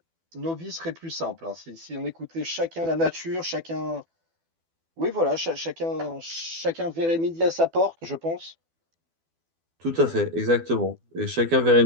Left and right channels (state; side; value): late; left; 12 ms